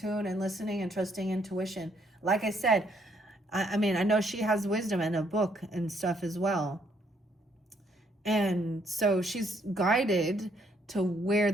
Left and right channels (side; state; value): both; normal; correlation 0.70